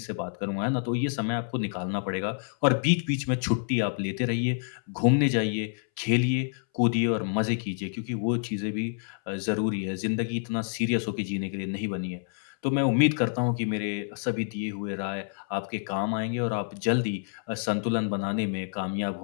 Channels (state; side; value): silent; right; 59 dB below the other